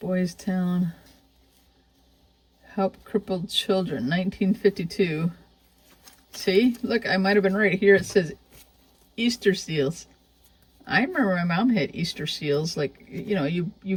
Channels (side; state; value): both; identical; correlation 1.00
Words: Town. Help Crippled Children, 1952. See? Look, I might have been right. Here it says Easter seals. I remember my mom had Easter seals. Like, you know,